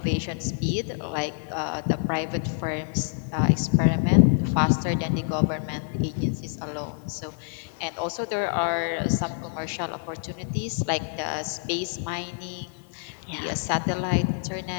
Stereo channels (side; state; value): right; silent; digital silence